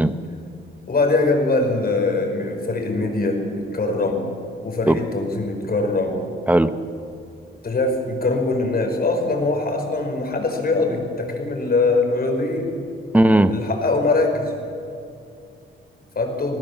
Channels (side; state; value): both; normal; correlation 0.53